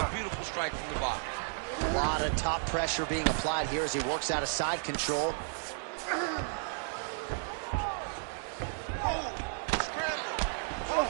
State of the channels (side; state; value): left; silent; 56 dB below the other